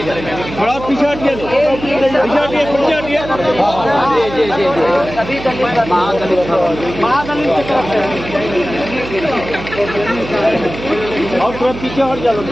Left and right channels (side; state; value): right; noise; hum, 11 dB below the sound